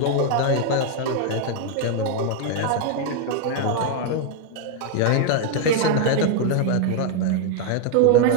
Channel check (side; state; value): both; different; correlation 0.00